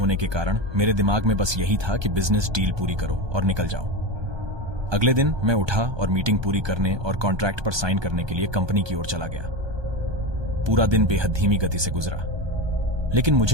के कारण मेरे दिमाग में बस यही था कि बिजनेस डील पूरी करो और निकल जाओ। अगले दिन मैं उठा और मीटिंग पूरी करने और कॉन्ट्रैक्ट पर साइन करने के लिए कंपनी की ओर चला गया। पूरा दिन बेहद धीमी गति से गुजरा, लेकिन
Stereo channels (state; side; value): late; left; 1.2 ms